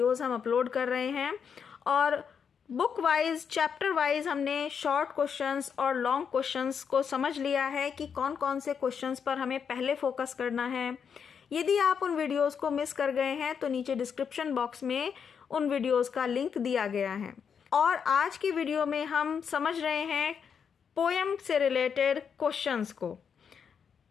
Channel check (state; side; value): quieter; right; 6.9 dB